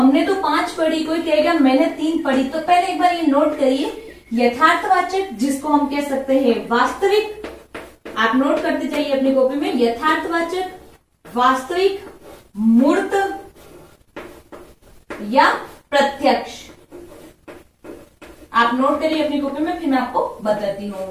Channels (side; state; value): both; identical; correlation 1.00